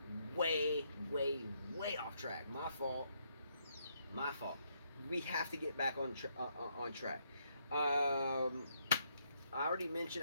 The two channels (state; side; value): inverted; both; correlation -0.74